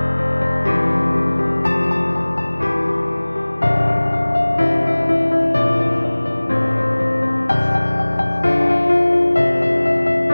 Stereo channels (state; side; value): inverted; both; correlation -1.00